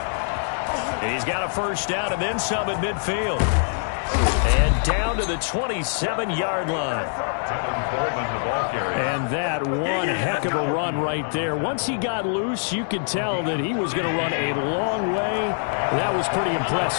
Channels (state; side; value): silent; right; digital silence